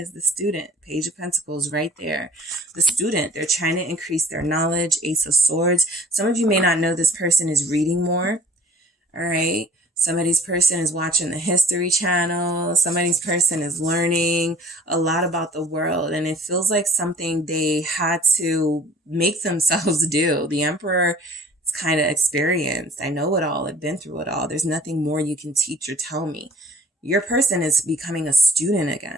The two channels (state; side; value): normal; both; correlation 0.50